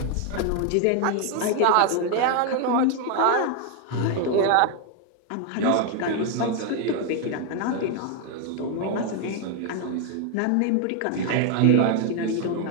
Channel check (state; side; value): different; both; correlation 0.01